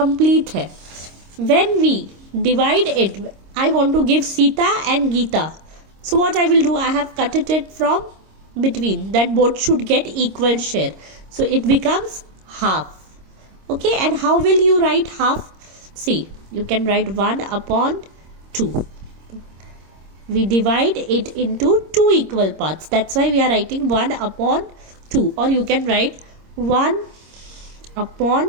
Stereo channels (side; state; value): left; late; 26 ms